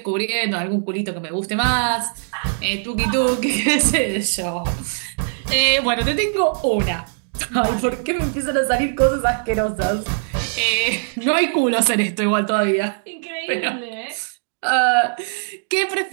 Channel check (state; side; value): silent; left; digital silence